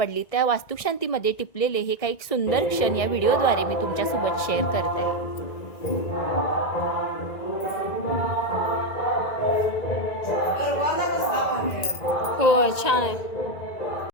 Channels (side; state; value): right; late; 1.9 ms